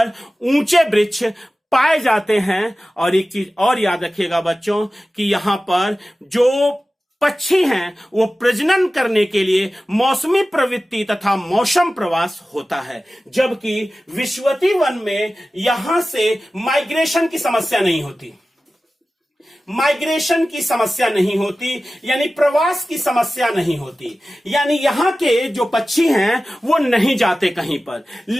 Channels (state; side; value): normal; both; correlation 0.95